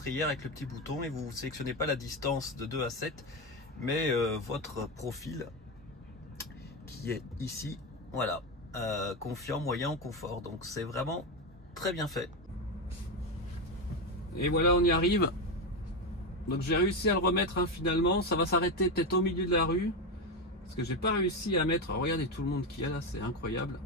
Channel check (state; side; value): normal; both; correlation 0.13